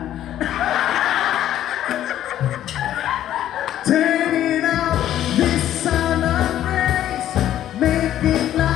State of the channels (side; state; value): right; quieter; 11.9 dB